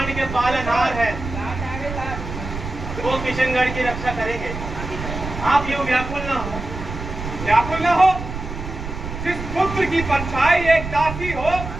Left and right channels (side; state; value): right; noise; rumble, 8 dB below the sound